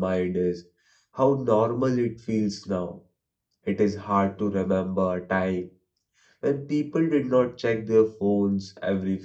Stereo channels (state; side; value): identical; both; correlation 1.00